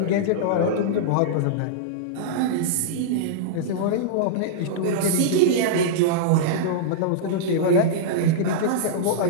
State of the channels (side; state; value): both; different; correlation -0.02